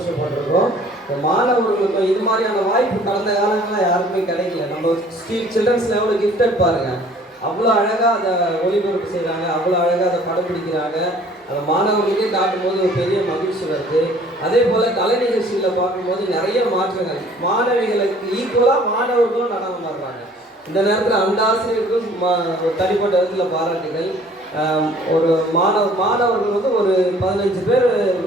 மாணவர்களுக்கும் இது மாதிரியான வாய்ப்பு கடந்த காலங்களில் யாருக்குமே கிடைக்கல. நம்ம சில்ட்ரன்ஸ் லெவலில் கிஃப்டட் பாருங்கள், அவ்வளோ அழகாக அதை ஒளிபரப்பு செய்கிறாங்க, அவ்வளோ அழகாக அதை படம் பிடிக்கிறாங்க. அந்த மாணவர்களுக்கே காட்டும்போது ஒரு பெரிய மகிழ்ச்சி வருது. அதே போல் கலை நிகழ்ச்சிகளை பார்க்கும்போது நிறைய மாற்றங்கள், மாணவிகளுக்கு ஈக்குவலாக மாணவர்களும் நடனம் ஆடுறாங்க. இந்த நேரத்தில் அந்த ஆசிரியர்களுக்கும் ஒரு தனிப்பட்ட விதத்தில் பாராட்டுகள். ஒரு மாணவர்கள் வந்து ஒரு 15 பேர்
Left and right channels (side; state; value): both; normal; correlation 0.54